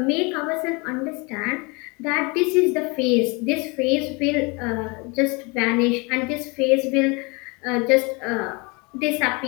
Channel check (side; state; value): right; quieter; 28.6 dB